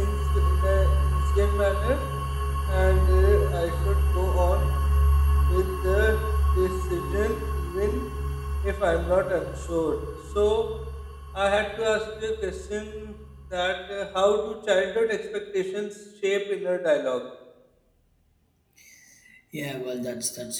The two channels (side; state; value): both; identical; correlation 1.00